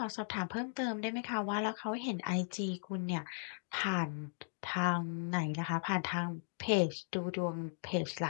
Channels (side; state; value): right; silent; digital silence